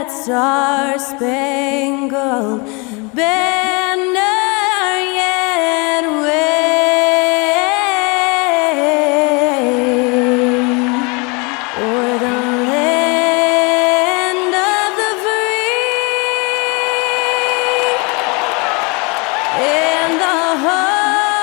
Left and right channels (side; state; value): right; quieter; 30.0 dB